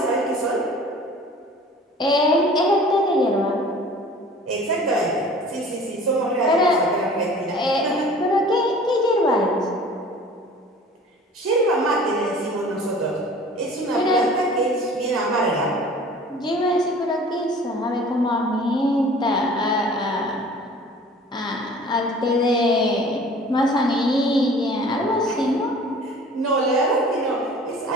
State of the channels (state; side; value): normal; both; correlation 0.46